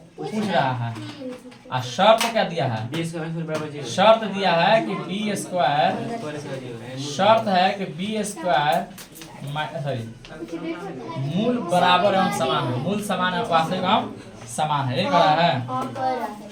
पूछ रहा है, और शर्त क्या दिया है? शर्त दिया है कि बी स्क्वायर, शर्त है कि बी स्क्वायर सॉरी मूल बराबर एवं समान है, मूल समान है, वास्तविक एवं समान है, ये कह रहा है।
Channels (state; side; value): identical; both; correlation 1.00